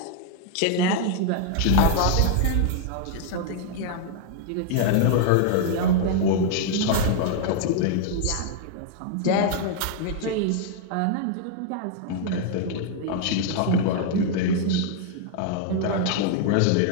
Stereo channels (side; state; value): both; different; correlation 0.00